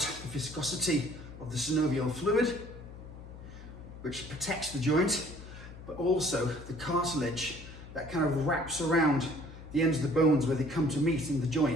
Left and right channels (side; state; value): left; noise; hum, 15 dB below the sound